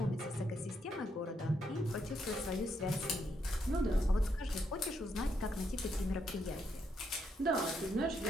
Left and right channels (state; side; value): normal; both; correlation 0.77